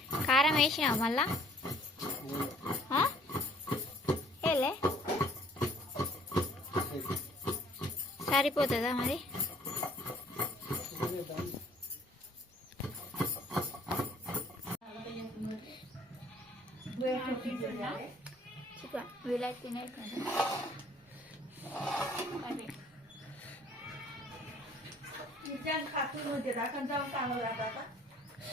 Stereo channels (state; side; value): normal; both; correlation 0.58